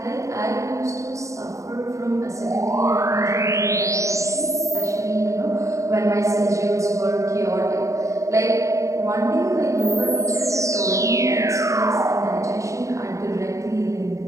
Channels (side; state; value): left; late; 0.15 ms